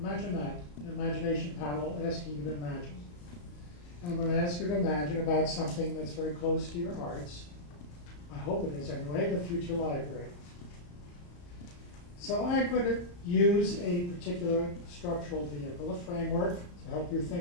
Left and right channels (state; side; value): late; right; 34 ms